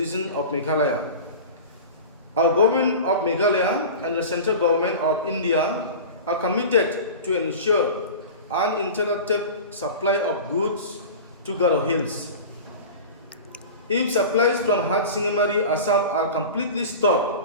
of Meghalaya. Our government of Meghalaya and the central government of India are committed to ensure uninterrupted supply of goods to Garo Hills. If supplies from Sengbhalang, Assam are completely stopped,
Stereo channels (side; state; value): both; inverted; correlation -0.33